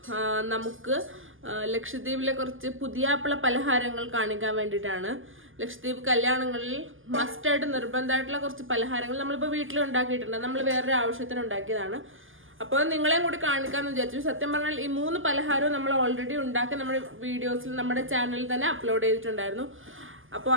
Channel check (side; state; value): left; late; 0.58 ms